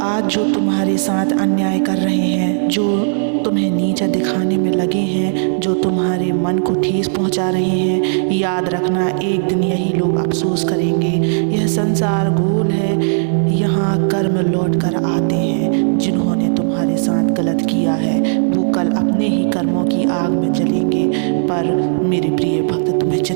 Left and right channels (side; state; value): left; silent; digital silence